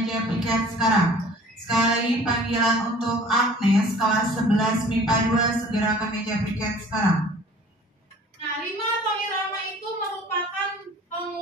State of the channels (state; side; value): normal; both; correlation 0.49